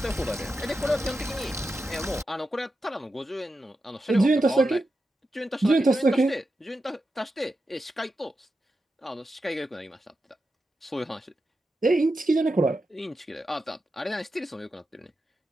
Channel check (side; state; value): both; normal; correlation 0.89